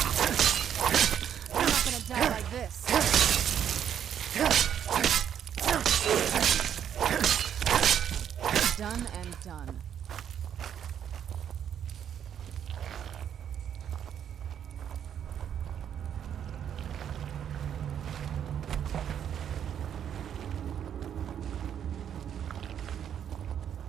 Die like this. Done and done.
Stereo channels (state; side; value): quieter; left; 9.1 dB